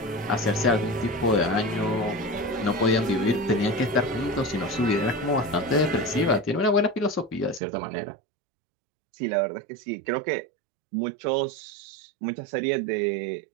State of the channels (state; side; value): drops out; left; at 7.6 s